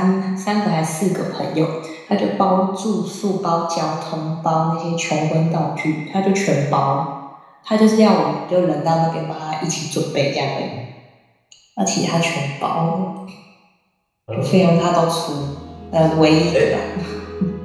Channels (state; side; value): identical; both; correlation 1.00